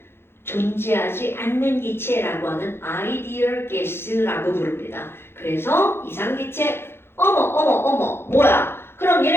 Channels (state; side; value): late; right; 0.11 ms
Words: 존재하지 않는 기체라고 하는 아이디얼 가스라고 부릅니다. 그래서 이상기체 어머 뭐야? 그럼